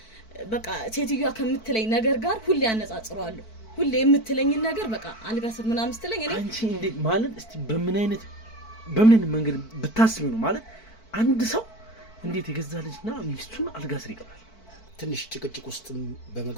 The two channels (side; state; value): right; late; 4.5 ms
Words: በቃ ሴትዮዋ ከምትለኝ ነገር ጋር ሁሌ ያነጻጽረዋለሁ ሁሌ የምትለኝ ነገር በቃ አልጋ ስር ምናምን ስትለኝ እኔ አንቺ እንዴት ማለት እስቲ በምን መንገድ ብታስቢ ነው ማለት አንድ ሰው እንዴት የገዛ ልጅና ሚስቱን አልጋ ስር ይቀራል ትንሽ ጭቅጭቅ ውስጥ